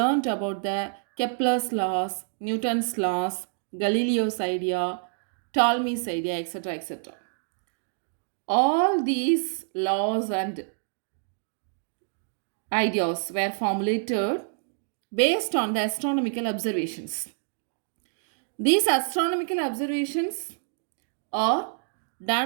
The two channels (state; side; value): silent; left; digital silence